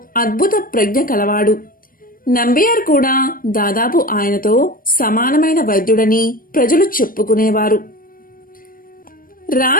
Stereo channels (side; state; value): right; late; 0.41 ms